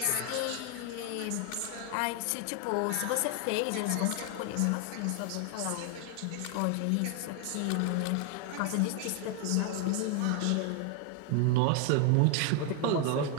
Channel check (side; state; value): both; different; correlation 0.01